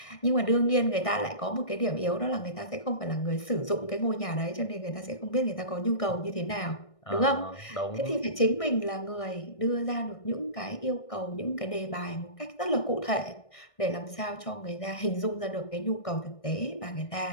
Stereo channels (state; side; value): late; right; 1.6 ms